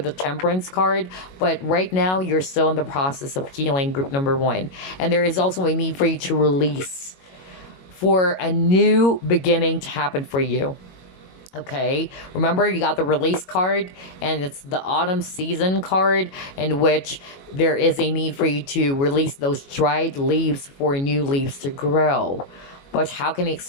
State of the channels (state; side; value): late; right; 22 ms